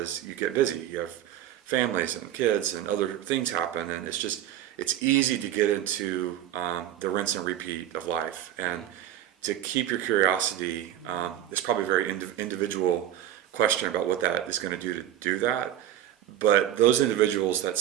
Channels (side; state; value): left; quieter; 11.6 dB